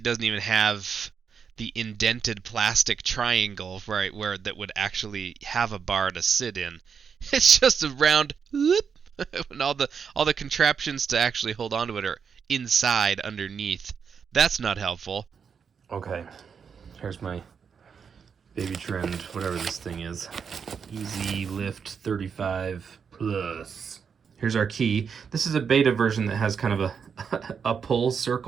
doesn't even have the indented plastic triangle where that would actually have a bar to sit in. It's just a round whoop, and all the contraptions to actually hold onto it are inside underneath. That's not helpful. Okay, here's my Baby Trend, whatever this thing is. Easy Lift 35 Plus. Here's our key. This is a beta version that has kind of a pull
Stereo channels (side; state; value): left; quieter; 6.6 dB